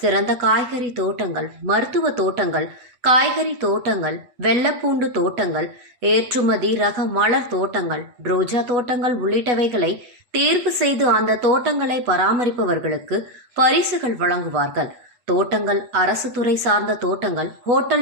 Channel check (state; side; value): late; left; 8.1 ms